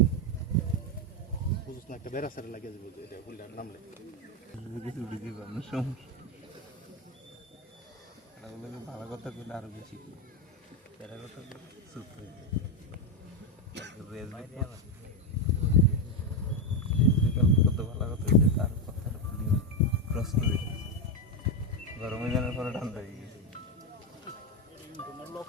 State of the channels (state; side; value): normal; both; correlation 0.07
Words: বুঝছ না একটা বেড়াসারে লাগে যাবে এটা ফুলটা নামলে কিছু বুঝি পাবো সমস্যা ভালো কথা কইলে আরো বেশি তেরা কথা চুপ হয়ে কত ভালো কথা হয়েছে তার কথাটা ক্রস করে গরমে জানার পরে ঠান্ডা হয়ে গেছে তোমার